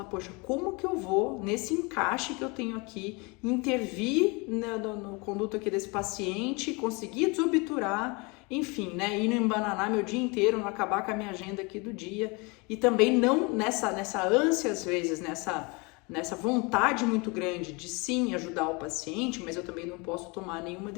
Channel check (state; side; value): quieter; right; 28.5 dB